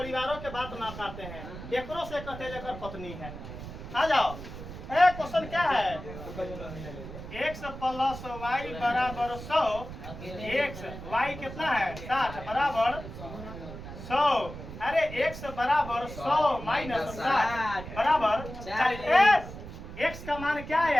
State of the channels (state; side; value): noise; right; rumble, 11 dB below the sound